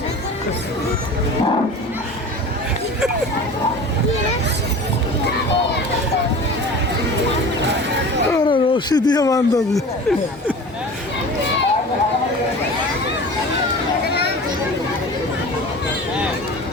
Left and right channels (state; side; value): normal; both; correlation 0.37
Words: রশি দিয়ে বান্ধব